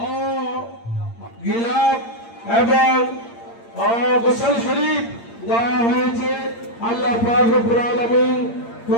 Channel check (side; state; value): right; late; 8.7 ms